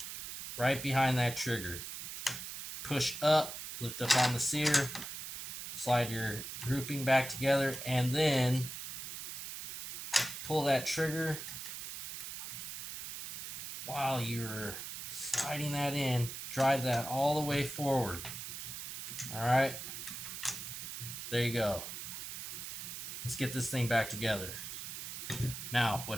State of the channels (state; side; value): noise; right; hiss, 8 dB below the sound